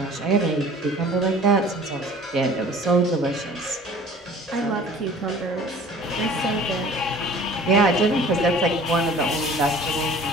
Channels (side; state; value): both; normal; correlation 0.47